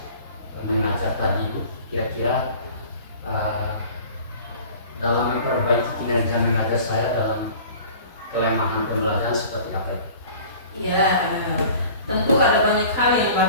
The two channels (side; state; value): both; inverted; correlation -0.45